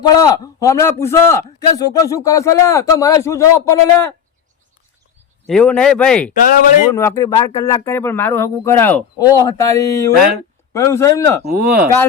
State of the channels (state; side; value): quieter; right; 7.6 dB